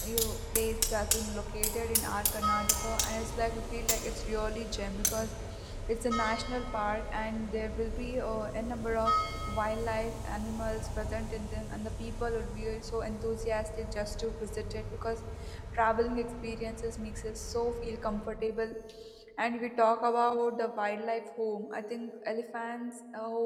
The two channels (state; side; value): identical; both; correlation 1.00